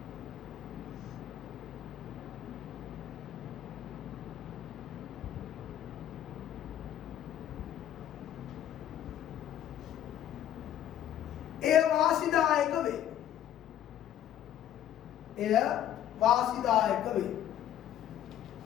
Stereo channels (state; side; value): quieter; right; 11.2 dB